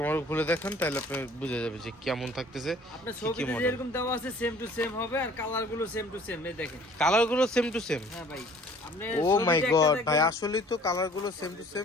মডেল খুলে দেখান, তাহলে আপনি বুঝে যাবেন যে কেমন থাকতেছে। আপনার ছবিতে যেরকম দেওয়া আছে সেম টু সেম হবে, আর কালারগুলো সেম টু সেম। এই দেখেন কালারগুলো সেম টু সেম। হ্যাঁ ভাই, আপনি ও মাই গড ভাই, আসলেই তো কালারগুলো সেম টু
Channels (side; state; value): both; normal; correlation 0.53